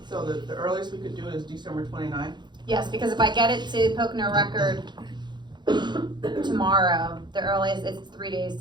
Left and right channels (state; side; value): late; left; 0.21 ms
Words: So the earliest we could do it is December 29th? Yes, because if I get it to Pocono Record tomorrow, the earliest, it's 3 days